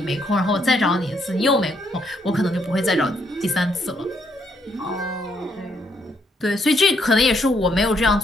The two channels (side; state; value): both; normal; correlation 0.73